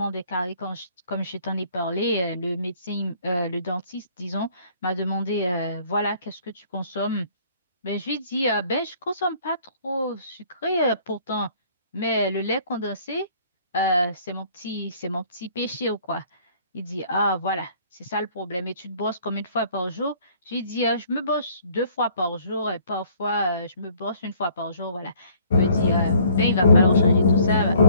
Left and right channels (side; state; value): both; inverted; correlation -0.58